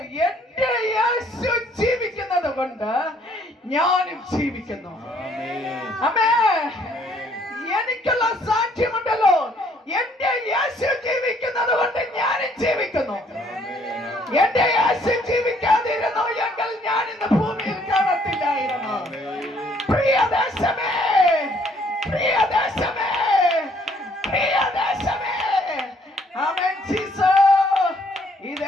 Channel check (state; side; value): normal; both; correlation 0.64